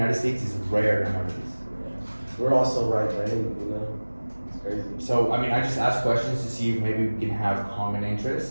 States is rare nowadays. We're also right-brained, you know? It's crazy. So, I just ask questions to see if maybe we can have common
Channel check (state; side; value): inverted; both; correlation -1.00